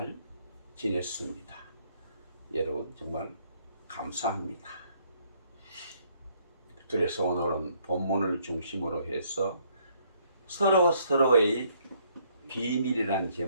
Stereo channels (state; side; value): inverted; both; correlation -0.67